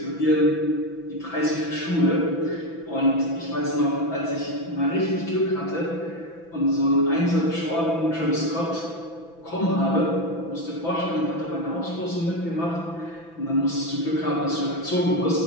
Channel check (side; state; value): right; late; 6.0 ms